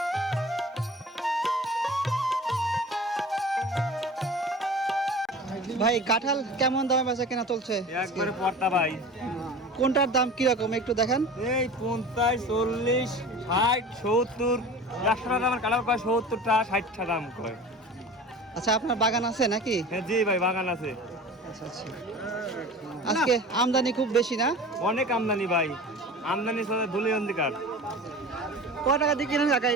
ভাই কাঁঠাল কেমন দামে বেচা কেনা চলছে? একবারে পড়তা ভাই। কোনটার দাম কিরকম একটু দেখান? এই 50, 40, 60, 70, 100 টাকা দামের কালার কয় 70 টাকা, 60 টাকা দাম কয়। আচ্ছা, আপনার বাগান আছে নাকি? হ্যাঁ জি ভাই, বাগান আছে। আচ্ছা আচ্ছা। আজকে আমদানি খুব বেশি না? অনেক আমদানি ভাই, আমদানি সাথে ধুলি অন্ধকার। কত টাকা দিয়ে কিনেন কাকা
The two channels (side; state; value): both; normal; correlation 0.38